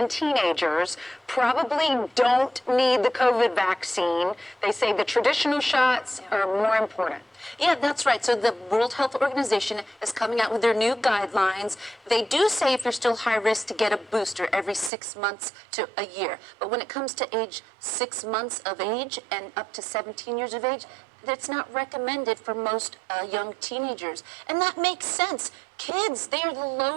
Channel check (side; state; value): left; drops out; at 14.9 s